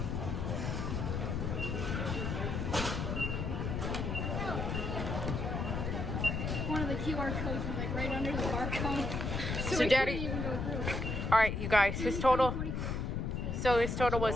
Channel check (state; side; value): noise; left; rumble, 2 dB below the sound